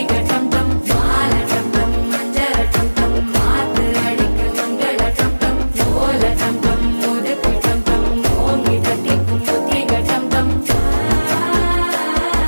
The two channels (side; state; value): both; inverted; correlation -1.00